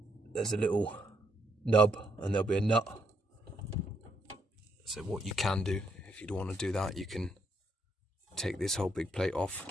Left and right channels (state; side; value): normal; both; correlation 0.74